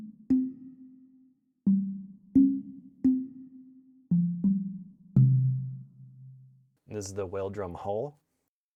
This is the whale drum hull.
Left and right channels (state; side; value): identical; both; correlation 1.00